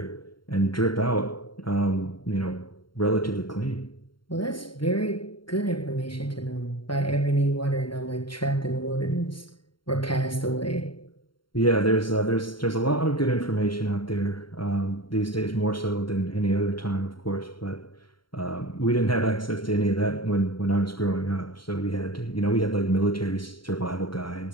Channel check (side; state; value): right; late; 0.73 ms